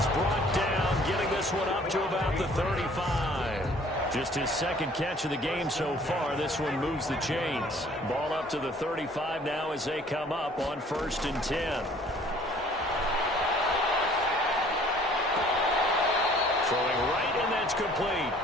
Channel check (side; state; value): both; normal; correlation 0.55